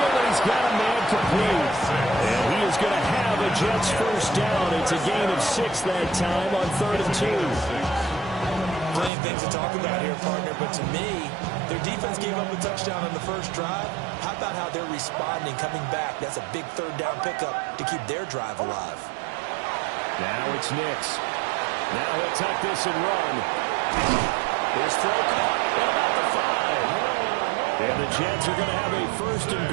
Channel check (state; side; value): drops out; left; at 9.1 s